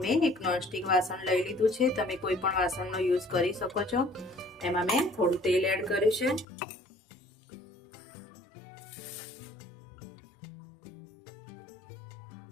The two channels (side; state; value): right; drops out; at 6.5 s